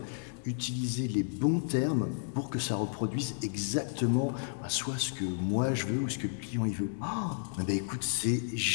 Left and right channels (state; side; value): silent; right; digital silence